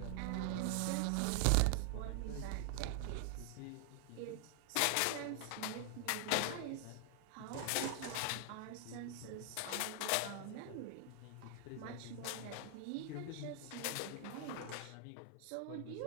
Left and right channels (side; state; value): both; different; correlation 0.01